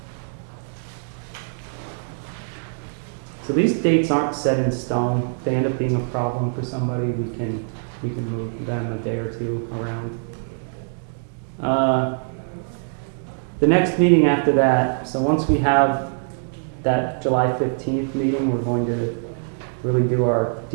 So these dates aren't set in stone. If they end up being a problem for somebody, we can move them a day or two around. The next meeting after that, so once we have that July 15th meeting, we're going to really do our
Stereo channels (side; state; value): left; silent; digital silence